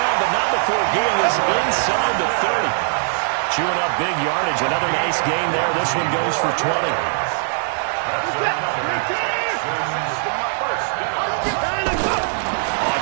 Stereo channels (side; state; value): left; silent; 56 dB below the other